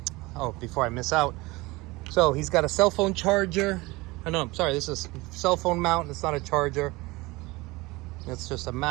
before I miss out. So he's got a cell phone charger. Oh, no, I'm sorry, this is a cell phone mount. It's not a charger. It's just a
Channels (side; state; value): left; quieter; 22.1 dB